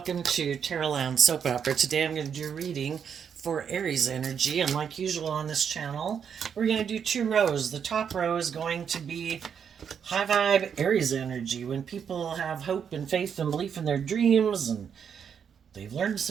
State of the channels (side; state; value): left; quieter; 7.5 dB